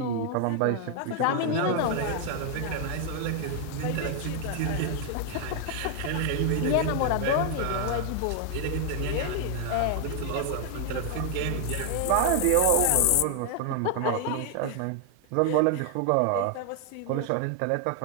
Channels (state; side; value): different; both; correlation 0.00